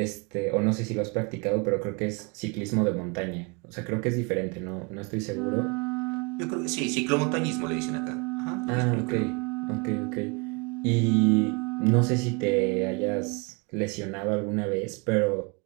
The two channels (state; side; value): quieter; left; 30.0 dB